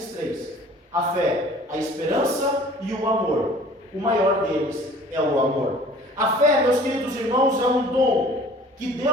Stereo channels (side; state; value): both; normal; correlation 0.49